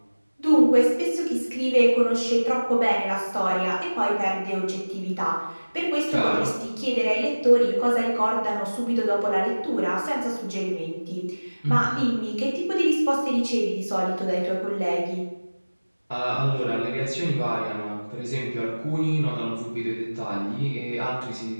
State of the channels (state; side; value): inverted; both; correlation -1.00